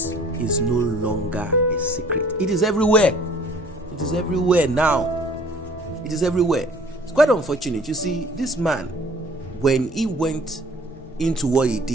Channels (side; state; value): both; normal; correlation 0.53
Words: is no longer a secret. It is everywhere. It is everywhere now. It is everywhere. It's quite unfortunate. You see, this man, when he went into what he